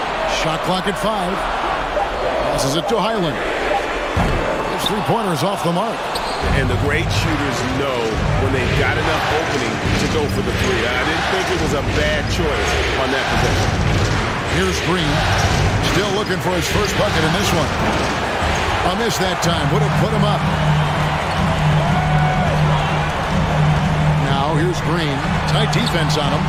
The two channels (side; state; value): both; identical; correlation 1.00